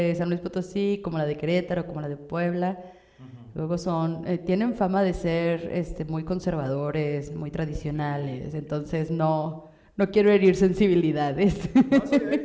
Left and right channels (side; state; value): both; identical; correlation 1.00